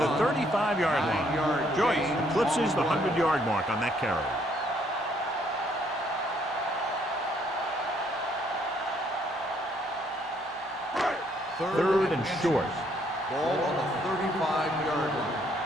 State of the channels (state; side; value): normal; both; correlation 0.68